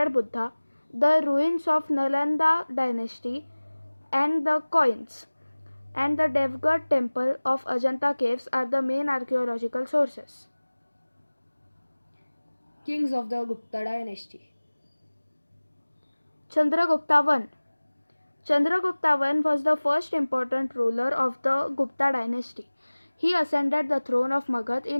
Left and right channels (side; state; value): both; inverted; correlation -1.00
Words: Buddha, the ruins of Nalanda dynasty, and the coins. And the Devgarh temple of Ajanta caves are the main archaeological sources. Kings of the Gupta dynasty. Chandragupta I. Chandragupta I was the first important ruler of the Gupta dynasty. He ascended the throne of Magad